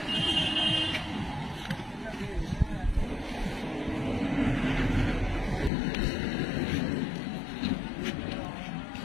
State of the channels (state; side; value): drops out; right; at 5.7 s